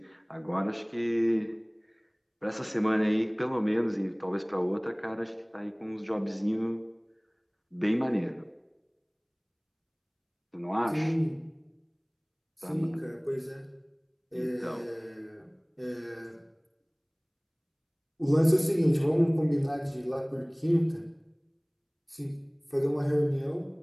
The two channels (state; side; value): identical; both; correlation 1.00